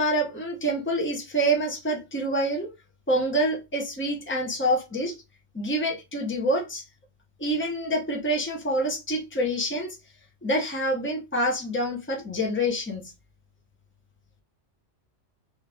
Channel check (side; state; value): both; normal; correlation 0.06